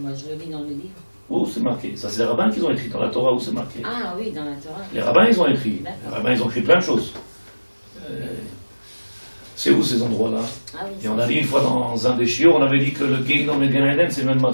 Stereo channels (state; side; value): inverted; both; correlation -1.00